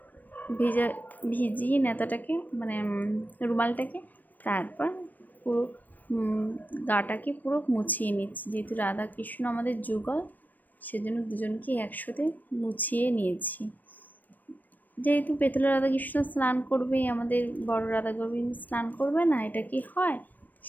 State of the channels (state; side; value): late; right; 0.086 ms